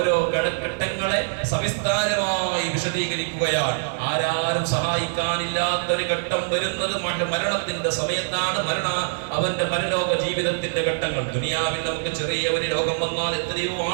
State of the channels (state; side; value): silent; left; 63 dB below the other